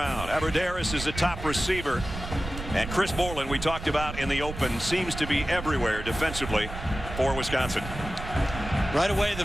Aberderis is the top receiver. And Chris Borland, we talked about in the open, seems to be everywhere defensively for Wisconsin. Right away, the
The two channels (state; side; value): noise; right; rumble, 9 dB below the sound